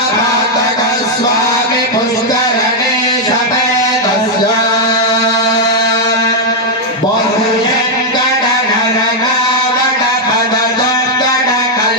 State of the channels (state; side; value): normal; both; correlation -0.01